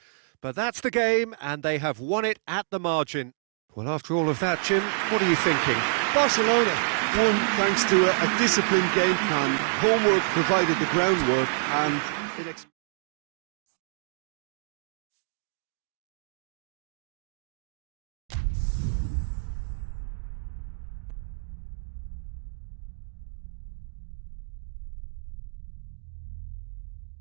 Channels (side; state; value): left; silent; digital silence